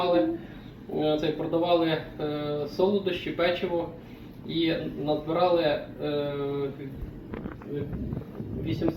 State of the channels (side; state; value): both; identical; correlation 1.00